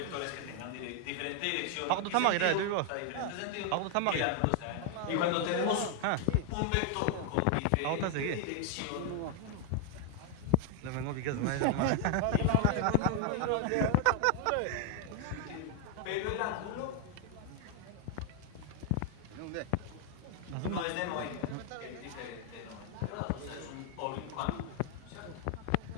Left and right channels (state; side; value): different; both; correlation 0.00